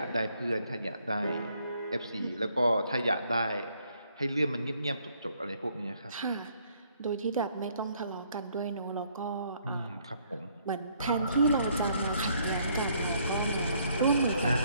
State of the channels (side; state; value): both; inverted; correlation -0.67